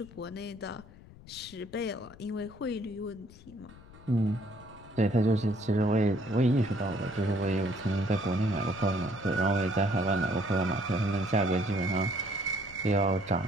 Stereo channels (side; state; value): left; noise; rumble, 20 dB below the sound